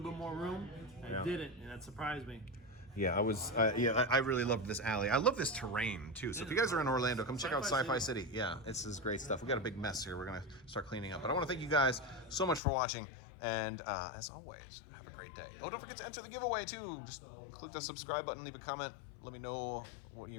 bit more room. I didn't, and that surprised me. Yeah, I really loved this alley. I love this terrain too. So if you guys are in Orlando, come check out Sci-Fi City. Yeah, this is great stuff. We got a big mess here. We're gonna start cleaning up. But I want to thank you guys so much for watching. And as always, have a great day. Oh, don't forget to enter the giveaway too. Just click the subscribe button, leave a comment. Let me know what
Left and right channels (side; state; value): right; drops out; at 12.6 s